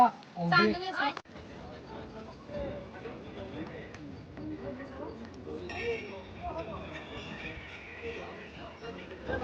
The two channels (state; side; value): identical; both; correlation 1.00